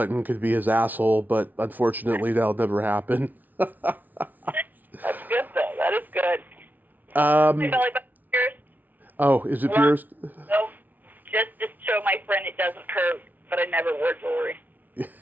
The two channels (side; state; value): left; late; 0.082 ms